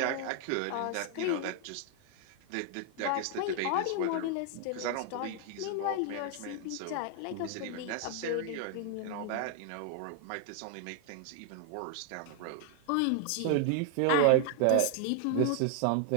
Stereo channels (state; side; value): different; both; correlation 0.00